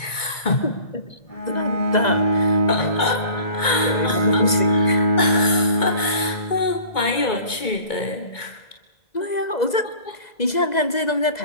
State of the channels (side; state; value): right; late; 2.2 ms